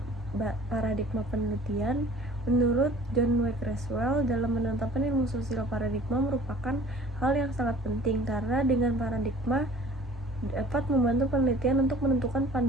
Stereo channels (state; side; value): normal; both; correlation 0.49